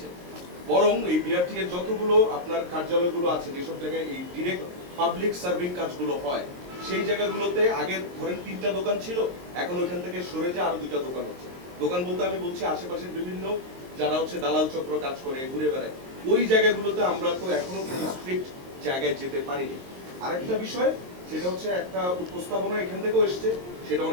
বরং এই বিআরটি এর যতগুলো আপনার কার্যালয়গুলো আছে, যেসব জায়গায় এই ডিরেক্ট পাবলিক সার্ভিং কাজগুলো হয়, সেই জায়গাগুলোতে আগে ধরেন 3টা দোকান ছিল, এখন ওইখান থেকে সরে যে আরো 2টা দোকান হচ্ছে। দোকান বলতে আমি বলছি আশেপাশের বিভিন্ন যারা দালাল চক্র কাজ করে ঘুরে বেড়ায়, ওই জায়গাগুলোতে আমরা তো এখনো কোনো স্ট্রিক্ট জায়গায় যেতে পারিনি। আরেকটা বিষয়, সেটা হচ্ছে একটা উপস্থাপনা এখান থেকেও এসছে, সেটা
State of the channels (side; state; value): left; late; 22 ms